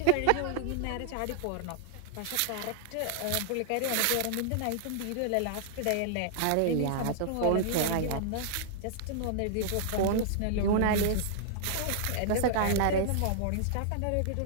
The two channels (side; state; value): both; different; correlation -0.01